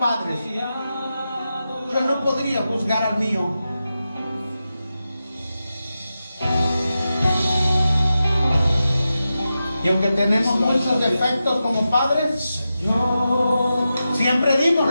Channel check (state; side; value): inverted; both; correlation -0.90